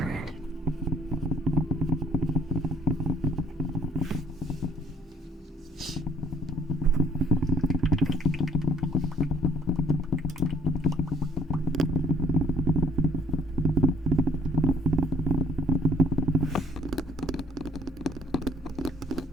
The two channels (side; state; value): both; normal; correlation 0.58